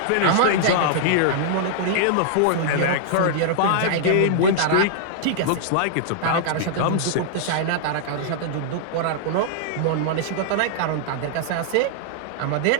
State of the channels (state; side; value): different; both; correlation -0.02